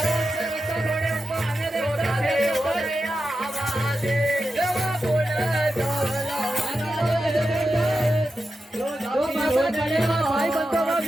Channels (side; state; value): both; normal; correlation 0.90